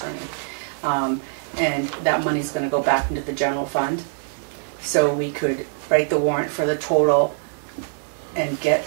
And that money's gonna go back into the general fund. So we could write the warrant for the total and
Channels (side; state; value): left; silent; 63 dB below the other